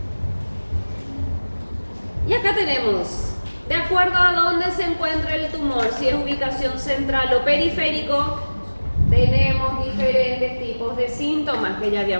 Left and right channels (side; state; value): both; inverted; correlation -1.00